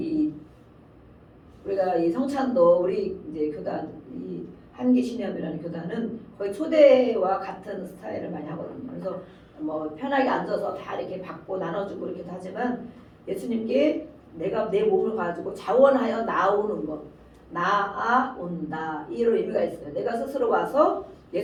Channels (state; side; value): identical; both; correlation 1.00